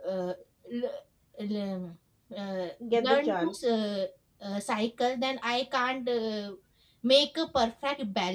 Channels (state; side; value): identical; both; correlation 1.00